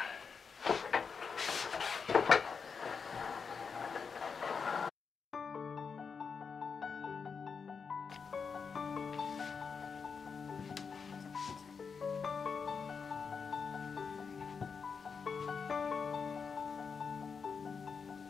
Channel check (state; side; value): quieter; right; 5.7 dB